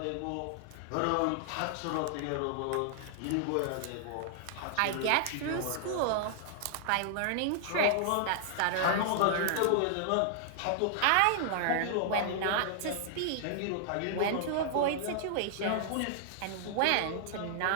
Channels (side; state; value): both; different; correlation -0.01